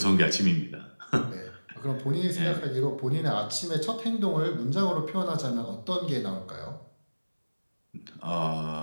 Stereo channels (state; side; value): inverted; both; correlation -1.00